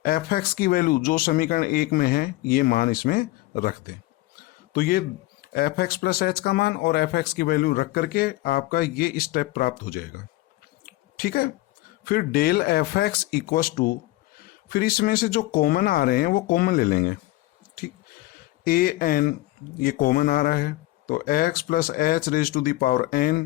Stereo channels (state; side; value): quieter; right; 18.4 dB